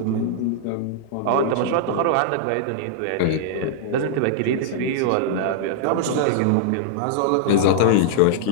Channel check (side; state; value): both; different; correlation -0.01